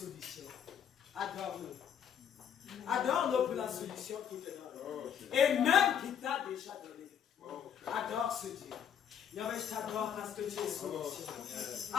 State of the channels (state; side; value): quieter; right; 8.6 dB